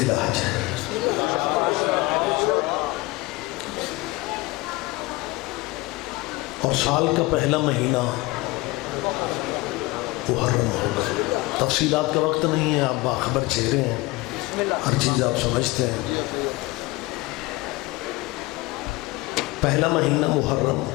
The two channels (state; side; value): quieter; right; 21.5 dB